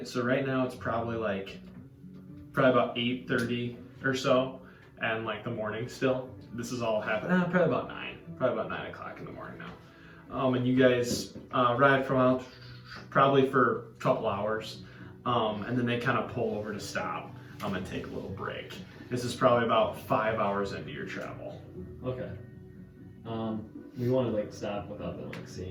So right now it's probably about 8:30 or so, and like the morning still. This is all happening. Probably about 9. Probably about 9 o'clock in the morning now. And you guys ride for a while, probably for a couple hours, and then they kind of pull over to stop and take a little break. This is probably about 5 hours into your travel. Okay. We want to like stop without them like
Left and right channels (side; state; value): both; identical; correlation 1.00